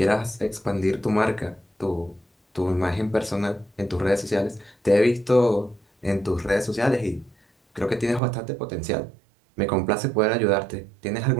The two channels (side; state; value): left; drops out; at 8.2 s